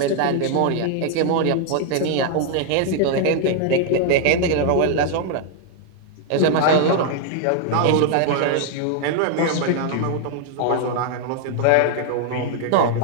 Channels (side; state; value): both; different; correlation 0.00